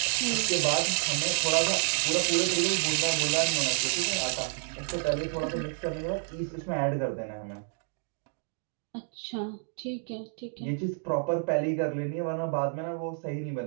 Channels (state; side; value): silent; left; 58 dB below the other